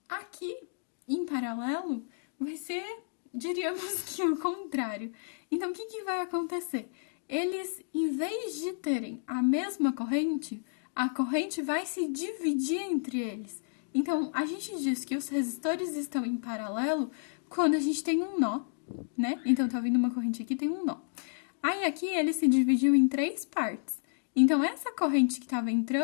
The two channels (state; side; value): silent; right; digital silence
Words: Aqui, em paralelo, vai ser, diríamos que o contrário. Então, o que vai acontecer? Eles, em vez de terem a mesma corrente, a corrente vai se dividir entre eles. Então, a gente diz que os resistores estão em paralelo quando a gente tem um nó, né? Então, tá vindo uma corrente aqui, tem um nó. Aí, aqui, ele se dividiu em três partes. Então, essa corrente que estava